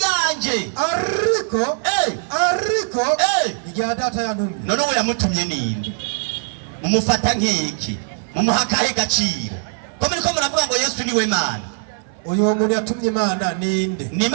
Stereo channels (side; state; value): left; silent; 58 dB below the other